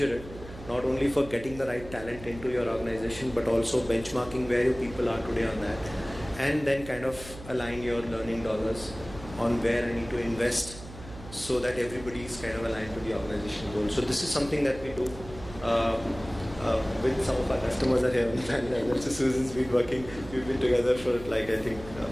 it, not only for getting the right talent into your organization, but also benchmarking where your people are today on that, and then kind of align your learning dollars on where I need to invest so that everybody is kind of aligned to the organizational goal. So this is something that we do with some of our customers are here on the panel. So Susan's been working, we've been together for like I think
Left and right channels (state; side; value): noise; right; hum, 15 dB below the sound